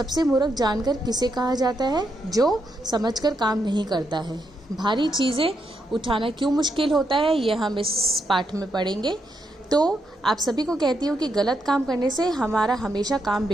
मूर्ख जानकर किसे कहा जाता है? जो समझकर काम नहीं करता है। भारी चीज़ें उठाना क्यों मुश्किल होता है, यह हम इस पाठ में पढ़ेंगे। तो आप सभी को कहती हूँ कि गलत काम करने से हमारा हमेशा काम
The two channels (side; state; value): both; normal; correlation 0.81